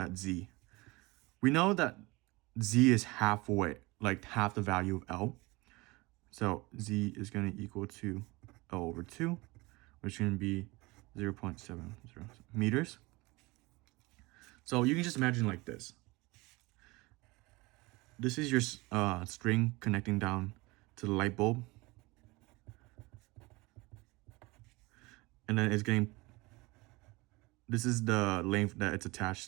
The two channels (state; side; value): quieter; left; 23.4 dB